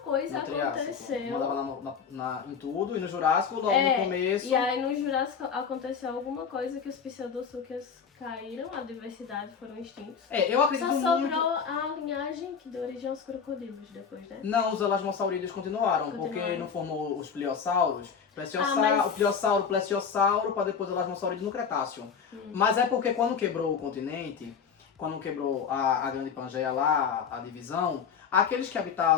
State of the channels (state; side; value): quieter; right; 6.5 dB